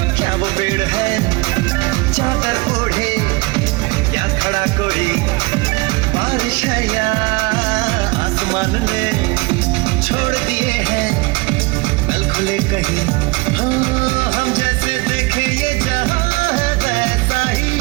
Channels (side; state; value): left; quieter; 25.4 dB